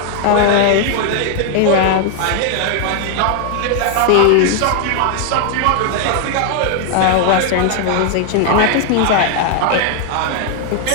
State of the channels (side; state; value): both; different; correlation 0.00